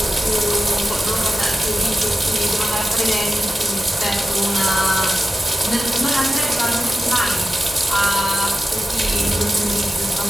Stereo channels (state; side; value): normal; both; correlation 0.94